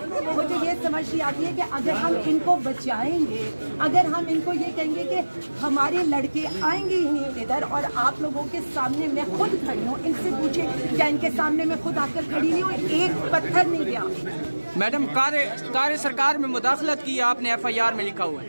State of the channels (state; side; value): inverted; both; correlation -1.00